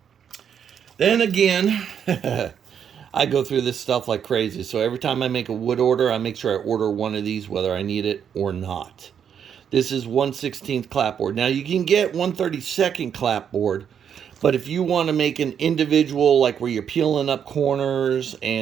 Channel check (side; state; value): left; quieter; 8.1 dB